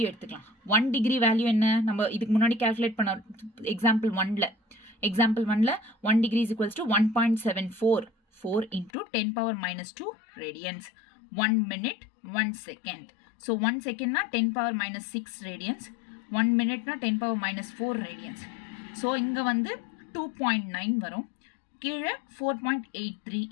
எடுத்துக்கலாம். 1 டிகிரி வேல்யூ என்ன? நம்ம இதுக்கு முன்னாடி கால்குலேட் பண்ண எக்ஸாம்பிள் 1ல 1 degree is equals to 1.744 into 10 power minus 2 radians. 1 minute 1 second. so 1 second na 10 power minus 6 radians. 1 minute na 10 power minus 4 radians. so இங்க வந்து 2.9 வரும், கீழே 4.83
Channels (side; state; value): right; drops out; at 8.9 s